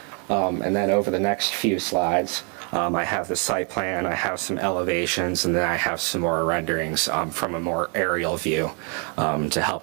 And then over the next few slides, I have the site plan, I have some elevations, and then I have some more renderings from a more aerial view to help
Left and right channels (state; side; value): quieter; left; 38.1 dB